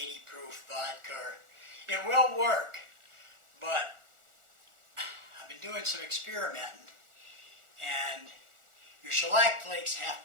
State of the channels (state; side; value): late; left; 1.4 ms